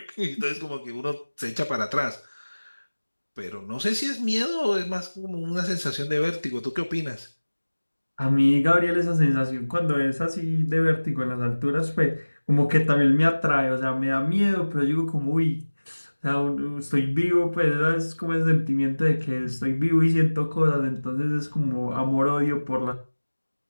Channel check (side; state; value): both; inverted; correlation -1.00